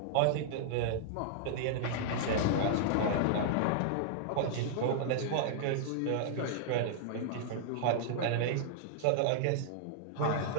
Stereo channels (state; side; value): different; both; correlation -0.01